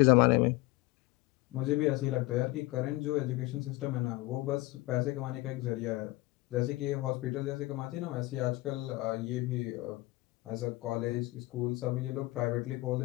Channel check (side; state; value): right; quieter; 20.3 dB